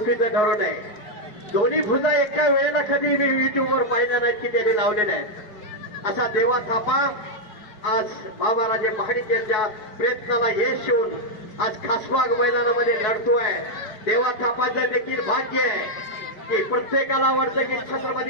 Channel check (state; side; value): late; right; 4.8 ms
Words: ठरवू नये. दोन्ही भुजा एका वेळेला कधी मी युट्यूबवर पाहिलं नाहीत की त्यांनी लावलेले आहेत. असा देवा थापा आज बाबाराजे महाडिक यांच्या प्रयत्नाला यश येऊन आज खासबाग मैदानामध्ये लढतोय. देवा थापाचं देखील भाग्य आहे की प्रत्येकाला वाटतं की